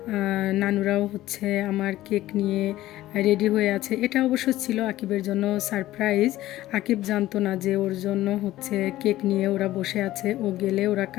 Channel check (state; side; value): quieter; right; 15.3 dB